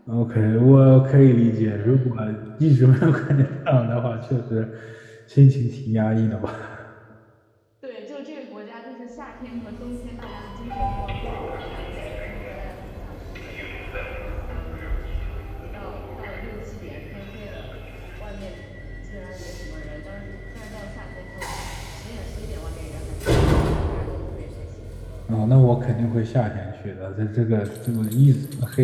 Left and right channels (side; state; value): both; identical; correlation 1.00